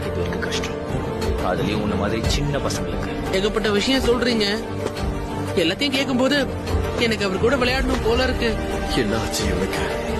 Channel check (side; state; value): both; identical; correlation 1.00